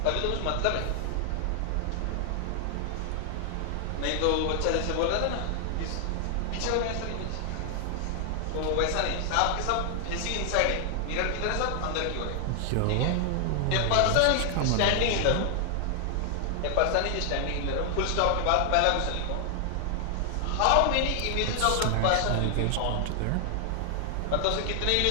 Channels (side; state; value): both; different; correlation 0.00